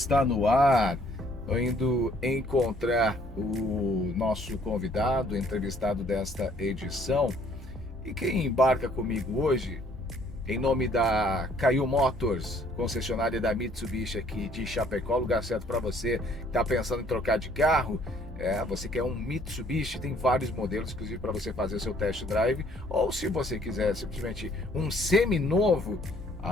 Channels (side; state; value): both; normal; correlation 0.61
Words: no ar. Estou indo encontrar o nosso convidado, entrevistado desta edição. E quem embarca comigo hoje, em nome da Caio Motors, concessionária da Mitsubishi aqui de Chapecó, lugar certo para você que está pensando em trocar de carro. Você quer um Mitsubishi, tem vários modelos, inclusive para você fazer o seu test drive. Ou se você quiser simplesmente um seminovo,